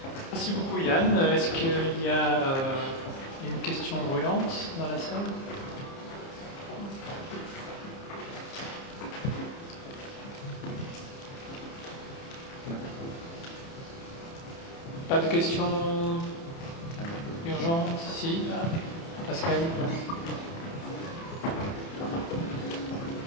Merci beaucoup Yann. Est-ce qu'il y a une questions brûlantes dans la salle? Pas de questions urgentes? Si, Pascal.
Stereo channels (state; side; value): late; right; 30 ms